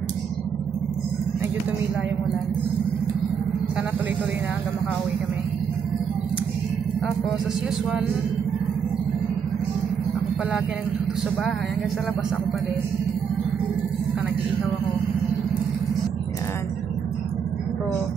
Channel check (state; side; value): quieter; left; 7.0 dB